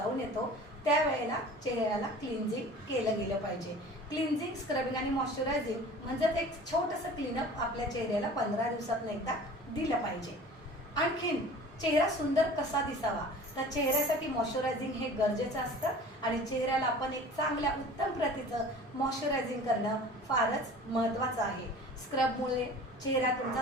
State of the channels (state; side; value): normal; both; correlation 0.43